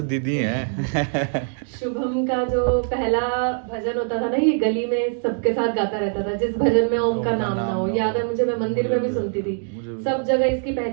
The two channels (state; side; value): silent; left; 64 dB below the other